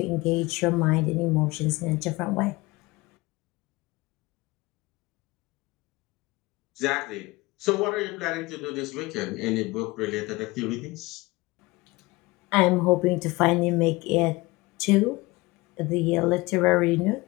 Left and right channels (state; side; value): quieter; right; 22.0 dB